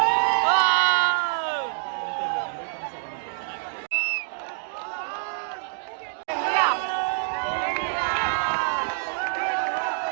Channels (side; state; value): left; silent; digital silence